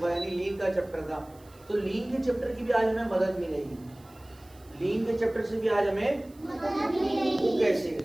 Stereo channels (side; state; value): right; noise; hiss, 27 dB below the sound